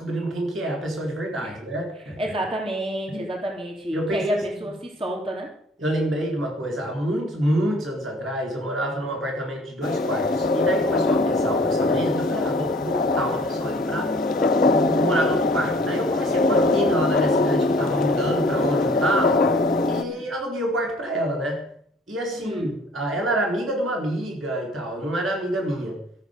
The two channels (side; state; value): both; normal; correlation 0.53